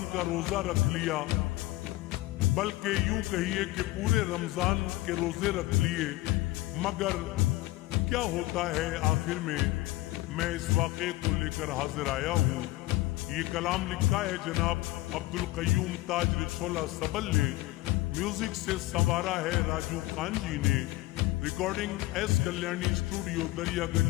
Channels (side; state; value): right; quieter; 18.2 dB